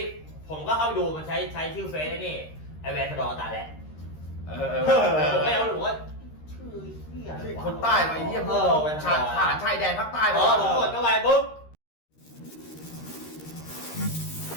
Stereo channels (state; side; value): late; right; 13 ms